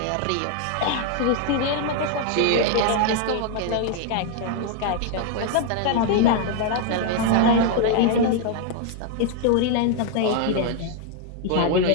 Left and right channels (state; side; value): different; both; correlation 0.01